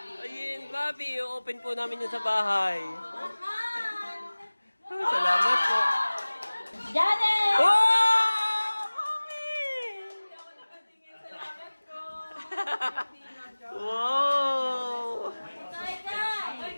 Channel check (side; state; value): both; inverted; correlation -1.00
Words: Ayun, Bobby. Open po namin yun sa bahay. Salamat po. Janet! Wow! Mami! Wow! Ito ay